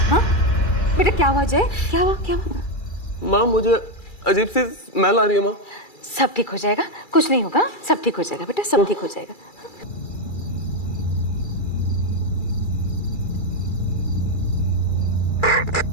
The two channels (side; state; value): right; late; 2.3 ms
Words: हाँ बेटा, क्या हुआ जय? क्या हुआ? माँ, मुझे अजीब सी स्मेल आ रही है माँ। सब ठीक हो जाएगा, कुछ नहीं होगा, सब ठीक हो जाएगा बेटा, सब ठीक हो जाएगा।